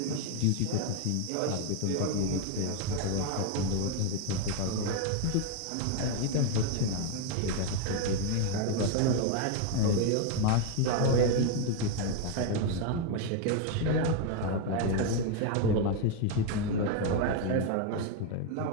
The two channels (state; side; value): different; both; correlation 0.01